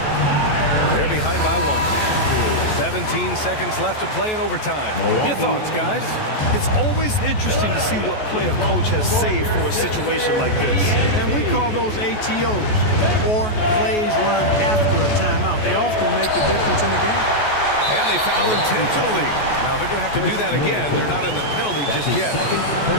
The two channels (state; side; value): late; right; 14 ms